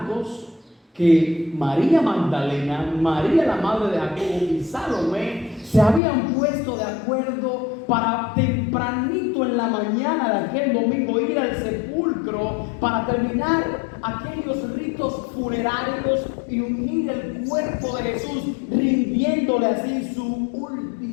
que María Magdalena, María la madre de Jacobo y Salomé se habían puesto de acuerdo para tempranito en la mañana de aquel domingo ir al sepulcro para terminar aquellos ritos funerarios y unir el cuerpo de Jesús, rindiéndole así su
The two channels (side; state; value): right; drops out; at 6.0 s